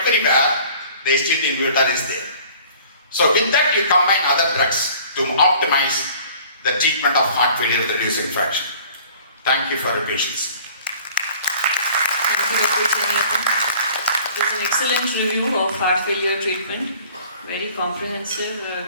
the SG2 inhibitor is there. So with that you combine other drugs to optimize the treatment of heart failure with reduced infection. Thank you for your patience. Thank you, Dr. Chenniappan. It was an excellent review of heart failure treatment. Very comprehensive,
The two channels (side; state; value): both; inverted; correlation -0.50